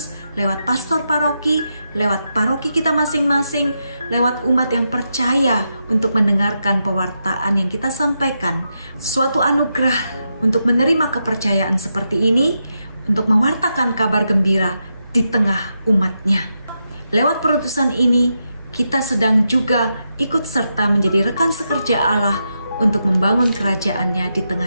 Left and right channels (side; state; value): both; inverted; correlation -0.85